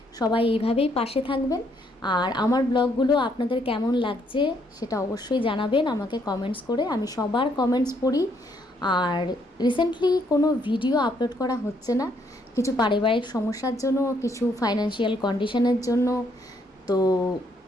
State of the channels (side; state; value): both; normal; correlation 0.71